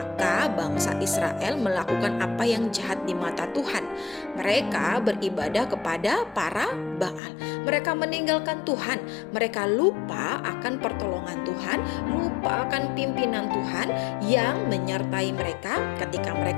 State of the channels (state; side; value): drops out; right; at 7.2 s